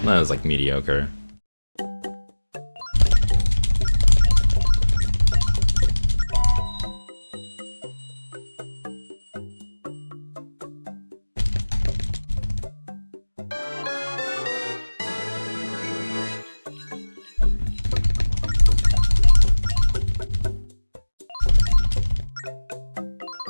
That was like mediocre.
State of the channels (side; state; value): both; inverted; correlation -1.00